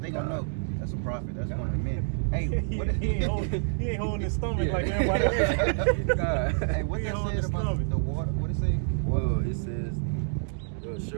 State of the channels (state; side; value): silent; left; digital silence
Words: They gonna know that's a prophet. That's one of the men. Hey, what he ain't holding his stomach Yeah. like everybody else. God. hey, what He that holding says his about stomach. the water? What it say? Well, it says,